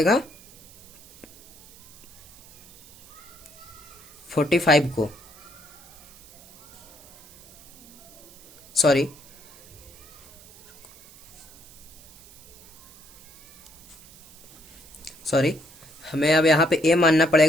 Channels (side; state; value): right; noise; hiss, 21 dB below the sound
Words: 45 को, सॉरी हमें अब यहाँ पे ए मानना